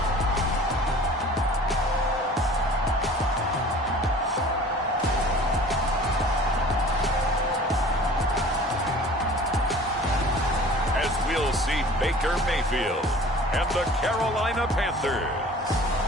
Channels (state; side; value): normal; both; correlation 0.46